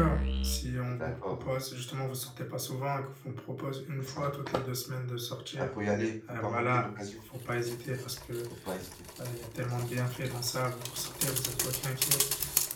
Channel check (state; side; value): identical; both; correlation 1.00